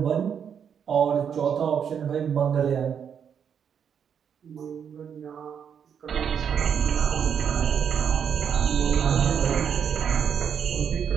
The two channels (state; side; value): quieter; left; 7.8 dB